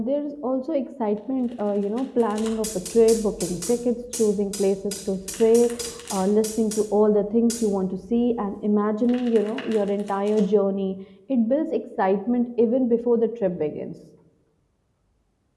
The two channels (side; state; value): both; identical; correlation 1.00